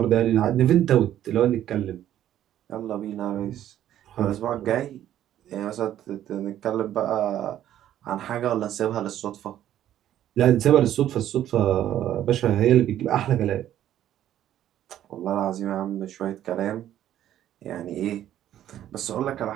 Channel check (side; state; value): left; quieter; 11.8 dB